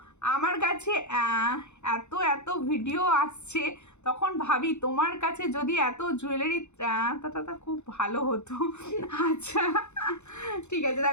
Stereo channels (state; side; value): late; right; 0.82 ms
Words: আমার কাছে এত এত ভিডিও আসছে, তখন ভাবি তোমার কাছে যদি এত জুয়েলারি তা খুব ভালো হতো। আচ্ছা ঠিক আছে,